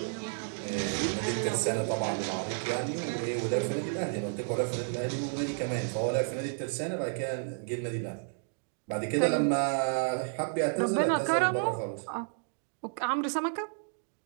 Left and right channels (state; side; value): silent; left; digital silence